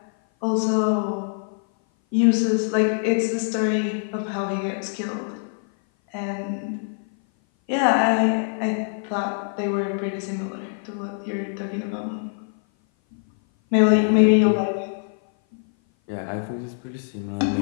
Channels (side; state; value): right; silent; 57 dB below the other